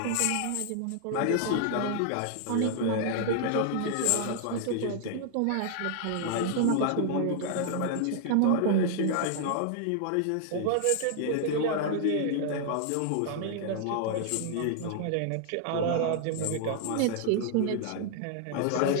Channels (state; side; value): different; both; correlation -0.01